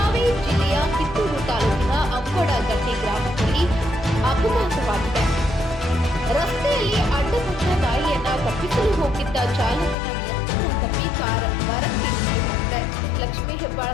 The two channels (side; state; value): right; drops out; at 10.0 s